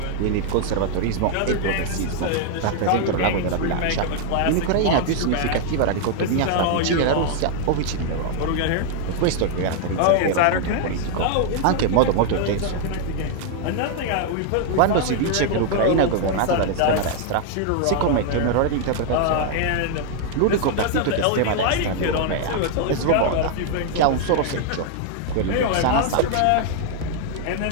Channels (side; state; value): both; different; correlation 0.00